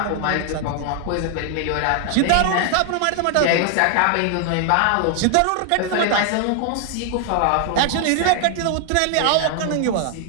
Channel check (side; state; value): both; different; correlation 0.00